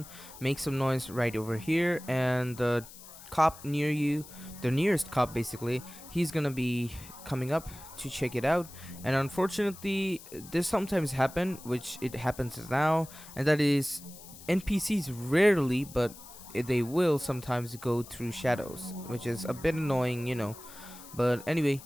make some noise right over here, and the cop near you, the nearest cop basically, he's gonna be coming up to check it out. And unfortunately, this sometimes happen, which it happens now, and that is NPCs rarely, but they will sometimes go through shadows, which is a bit annoying. But anyway,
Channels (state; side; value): noise; left; hiss, 17 dB below the sound